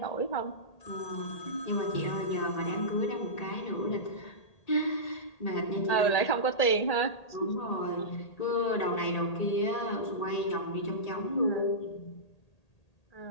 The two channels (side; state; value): right; late; 1.8 ms